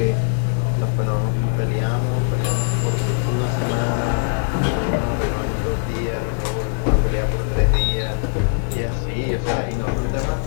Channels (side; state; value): right; silent; digital silence